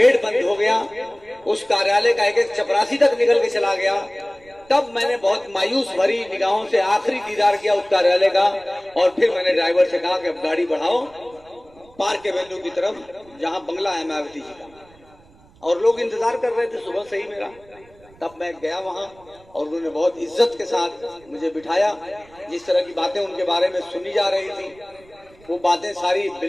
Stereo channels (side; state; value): right; noise; rumble, 27 dB below the sound